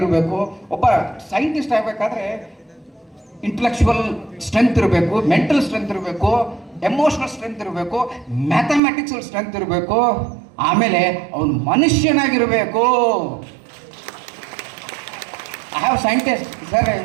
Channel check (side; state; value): left; drops out; at 8.8 s